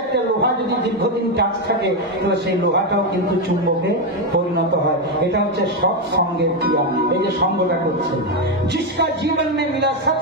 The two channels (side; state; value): both; normal; correlation 0.07